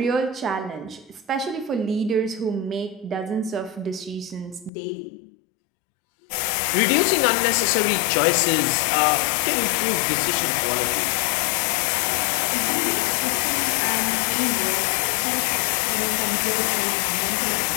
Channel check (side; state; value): right; drops out; at 4.7 s